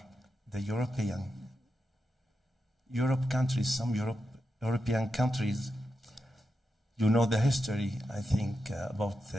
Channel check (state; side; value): normal; both; correlation 0.88